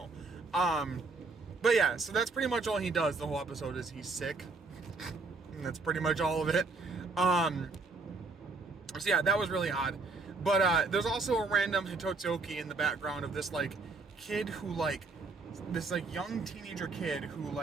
But yeah, so that's pretty much all he does the whole episode is he's sick. And that's pretty much all of it. So yeah, that was really odd. But there's also a random Hitotsuki in the background of this kid who this young teenager kid who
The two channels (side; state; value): left; quieter; 3.8 dB